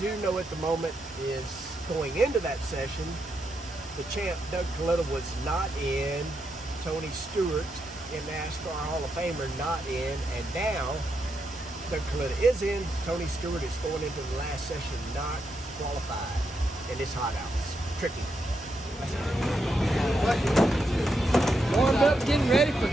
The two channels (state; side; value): normal; both; correlation 0.82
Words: know at the moment is going into that session, the champ Doug Kalitta was not in, Tony Stewart in NASCAR Hall of Famer not in, and now Doug Kalitta is in. Tony Stewart is going into the last session not qualified, and it's hot out. It's tricky. Warmed up, getting ready for